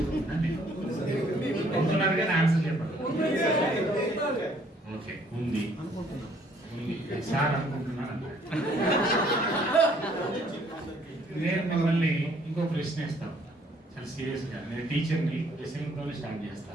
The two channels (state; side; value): normal; both; correlation 0.63